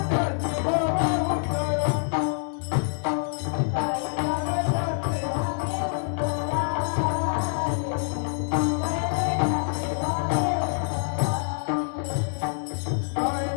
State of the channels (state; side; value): silent; right; digital silence